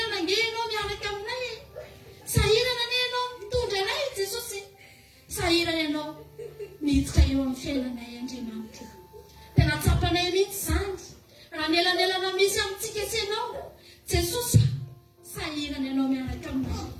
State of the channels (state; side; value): identical; both; correlation 1.00